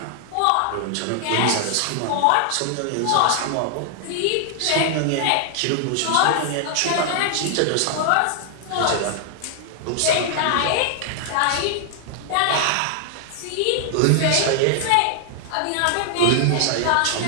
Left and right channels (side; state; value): both; different; correlation 0.00